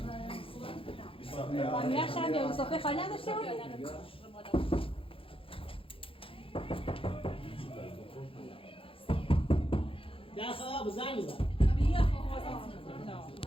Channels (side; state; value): right; late; 0.26 ms